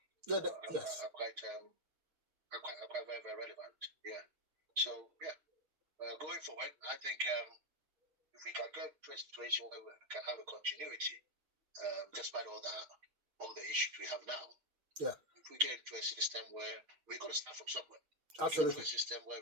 quite very, very relevant. Yeah. So, going forward, I think if we can get to a situation where we can have a continuity, despite all the issues we have now. Yeah. If we get into a system where we're going to start from somewhere. Absolutely. A system where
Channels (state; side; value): late; left; 6.5 ms